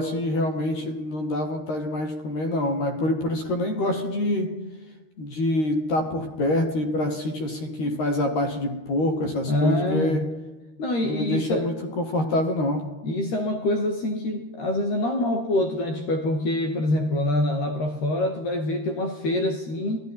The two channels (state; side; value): late; right; 13 ms